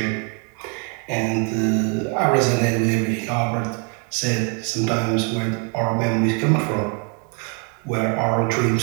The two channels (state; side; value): quieter; left; 38.1 dB